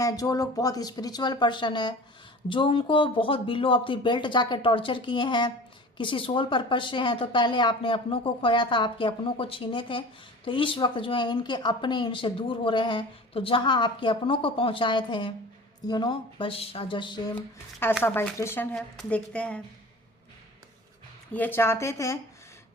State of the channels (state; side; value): normal; both; correlation 0.39